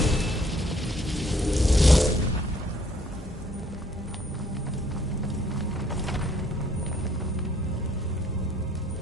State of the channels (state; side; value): normal; both; correlation 0.63